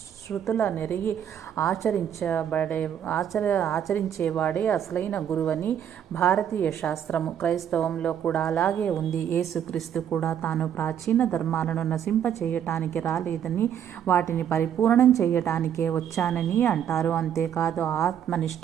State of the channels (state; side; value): quieter; left; 9.3 dB